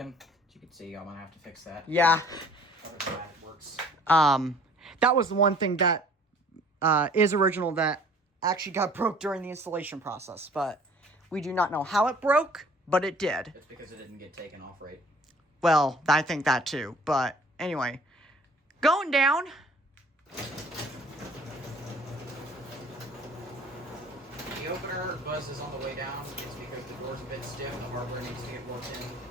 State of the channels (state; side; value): normal; both; correlation 0.53